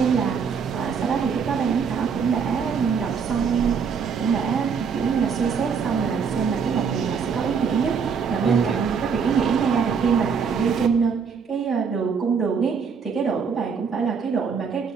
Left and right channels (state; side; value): quieter; left; 6.1 dB